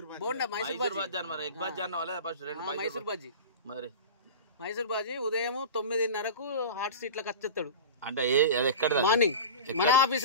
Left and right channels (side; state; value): both; inverted; correlation -0.32